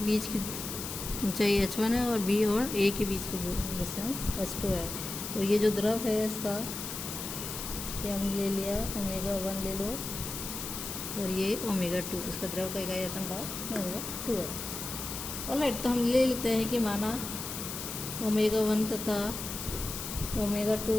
बीच की ऊंचाई h1 है और B और A के बीच की डिस्टेंस h2 है। और ये जो द्रव है इसका ये हमने ले लिया ω1 ले लो और ये ω2, इसका द्रव का इकाई आयतन भाग ω2 है। ऑलराइट, तो हम ले लेते हैं कि माना ω1 तथा ω2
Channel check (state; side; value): noise; left; hiss, 6 dB below the sound